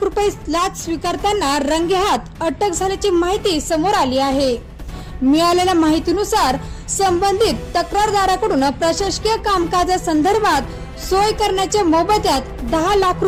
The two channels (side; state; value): both; identical; correlation 1.00